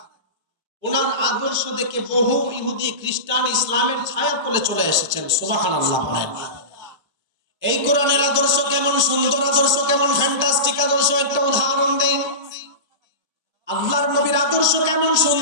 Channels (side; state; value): left; late; 1.3 ms